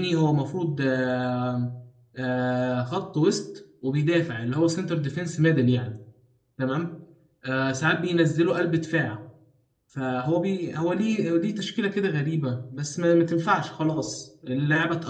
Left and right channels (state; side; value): identical; both; correlation 1.00